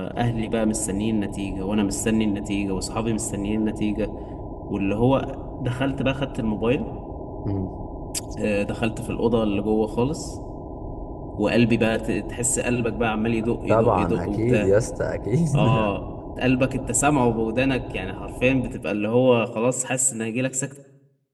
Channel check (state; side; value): identical; both; correlation 1.00